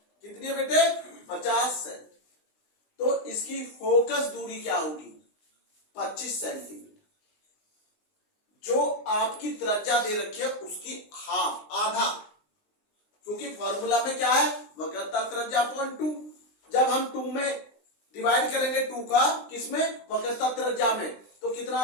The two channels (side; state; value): right; late; 20 ms